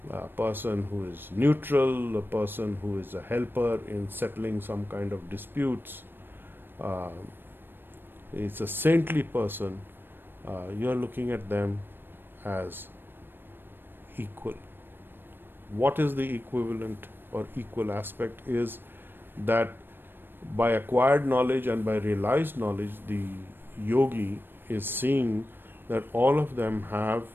a person who is neutral, a person who is a helper in settling some kind of disputes, it's a saintly person, you are looking at them as equal. What is the equivalent or equal aspect is that by acquired knowledge and by realized knowledge, the yogi is seeing that all of them have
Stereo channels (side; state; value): left; late; 0.097 ms